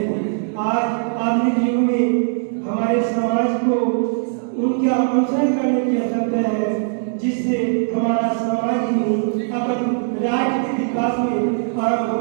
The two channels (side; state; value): left; silent; 66 dB below the other